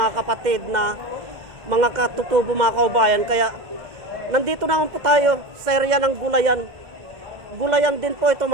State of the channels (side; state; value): left; late; 2.1 ms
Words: kapatid na mga katutubo mga kaubayan. Kaya nandito naman po tayo sa area ng Gulayan. Gulayan din po ito